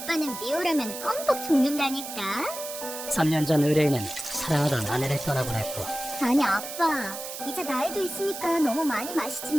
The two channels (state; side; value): noise; right; hiss, 9 dB below the sound